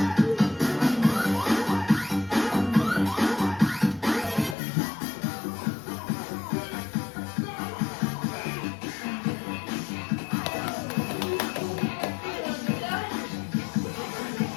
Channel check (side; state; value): right; drops out; at 4.5 s